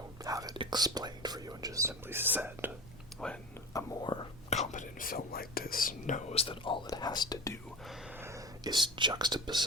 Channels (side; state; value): both; normal; correlation 0.30